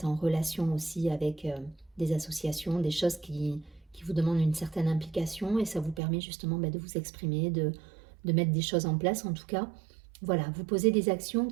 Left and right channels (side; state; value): left; drops out; at 6.0 s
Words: en relation aussi avec des associations, des choses qui vous demandent une certaine implication, et ça vous permet justement de vous exprimer, de mettre des choses en place. En tout cas, voilà, vous posez des actions